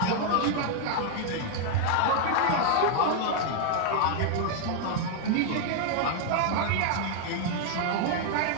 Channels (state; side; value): different; both; correlation 0.00